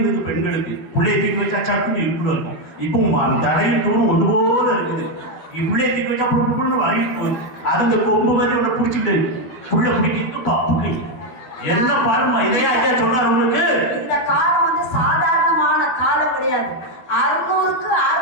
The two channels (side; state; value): right; late; 12 ms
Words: பெண்களுக்கு. புள்ளைய தூக்கி வச்சா சட்டுன்னு இடுப்புல இருக்கும். இப்போ தலையும் தூரம் ஒன்று போல இருக்குது. புள்ளைய தூக்கி வச்சா புண்ணு வாங்கிட்டு போகுது. அது இந்த கொம்பு மாதிரி ஒண்ணு பிடிச்சிட்டு புள்ள பிடிக்கிட்டு பப்பு கை. என்ன பாருமா இதையா ஐயா சொன்னார் உங்களுக்கு? இந்த காலம் வந்து சாதாரணமான காலம் கிடையாது. 600க்கு